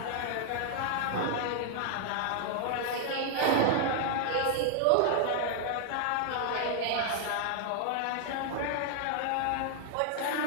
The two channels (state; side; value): different; both; correlation 0.00